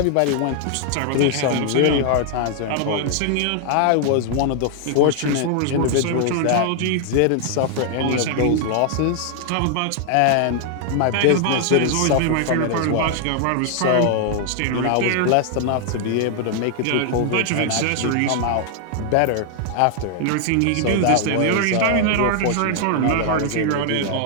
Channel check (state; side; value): different; both; correlation 0.00